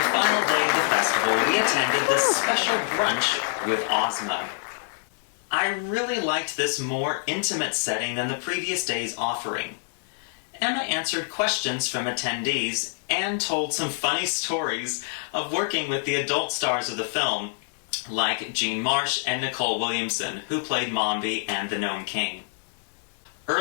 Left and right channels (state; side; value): silent; right; digital silence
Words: final day of the festival, we attended the special brunch with Ozma. I really liked this more intimate setting than the previous day's offering. Emma answered questions from attendees and told some funny stories of working with the adult stars of the film, like Jean Marsh and Nicole Williamson, who played Mombi and the Gnome King.